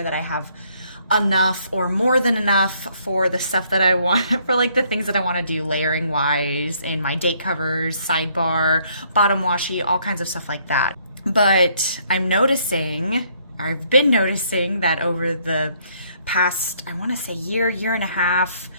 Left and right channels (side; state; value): both; inverted; correlation -0.67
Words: that I have enough or more than enough for the stuff that I want, for like the things that I want to do layering wise in my date covers, sidebar, bottom washi, all kinds of stuff like that. But I've been noticing that over the past, I want to say year and a half,